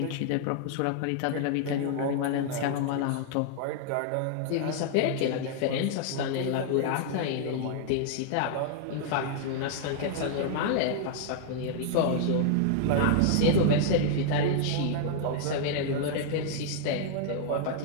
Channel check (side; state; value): both; different; correlation -0.01